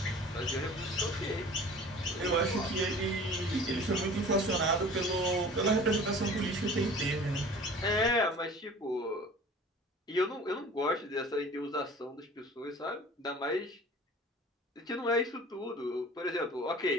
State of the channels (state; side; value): normal; both; correlation 0.44